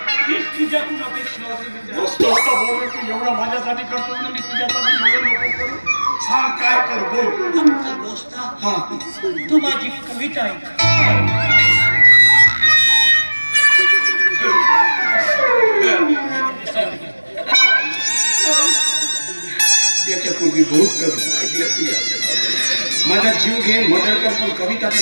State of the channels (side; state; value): both; inverted; correlation -1.00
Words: हीच तुझ्याकडून अपेक्षा होती मित्र. दोस्ता बोल. तू एवढं माझ्यासाठी करतो ना, मी तुझ्यासाठी एवढं नको करू. सांग काय कर बोल. आमचा दोस्ता हा तू माझी कविता ऐक. याच्यापूर्वी बहुत कविता ऐकल्या तुझ्या. माझा जीव घे मदर कर पण कविता